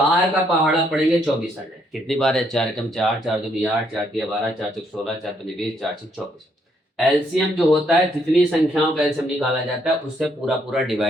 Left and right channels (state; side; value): normal; both; correlation 0.72